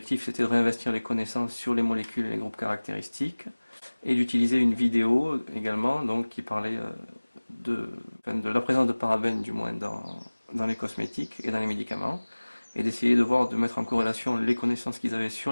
c'était de réinvestir les connaissances sur les molécules et les groupes caractéristiques et d'utiliser une vidéo également, donc, qui parlait de la présence de parabènes, du moins, dans les cosmétiques et dans les médicaments, et d'essayer de voir, de mettre en corrélation les connaissances qu'ils avaient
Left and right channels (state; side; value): inverted; both; correlation -1.00